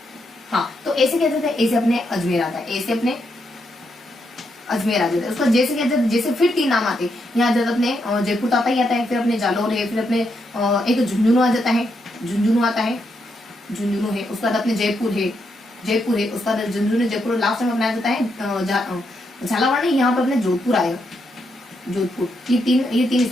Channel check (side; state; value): both; normal; correlation 0.80